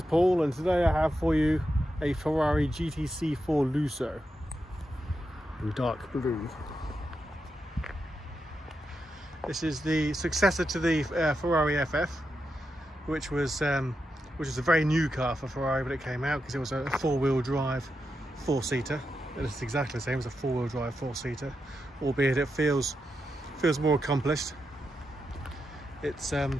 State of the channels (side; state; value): both; normal; correlation 0.87